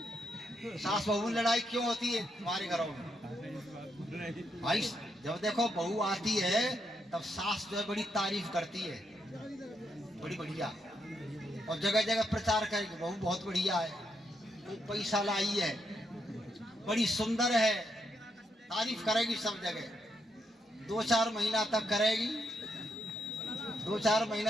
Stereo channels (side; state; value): both; normal; correlation 0.79